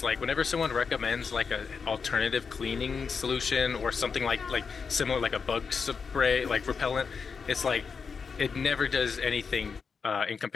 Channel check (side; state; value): right; quieter; 5.6 dB